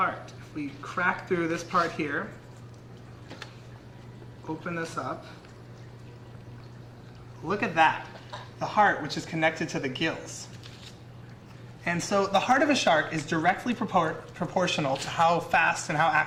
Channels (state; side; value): identical; both; correlation 1.00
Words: If we crack through this part here, open this up, look at that. The heart, which is connected to the gills. And so the heart of a shark is directly proportional to how fast and how